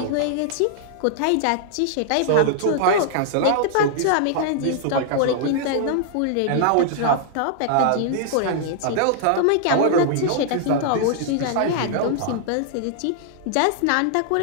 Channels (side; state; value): both; different; correlation -0.01